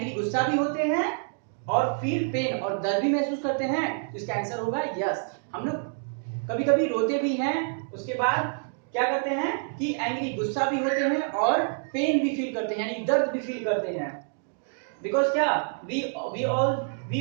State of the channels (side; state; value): left; silent; digital silence